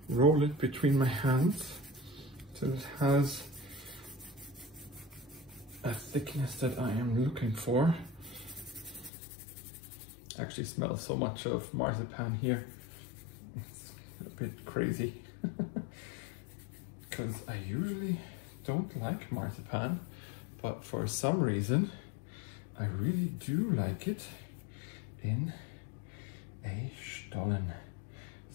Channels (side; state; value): right; drops out; at 9.1 s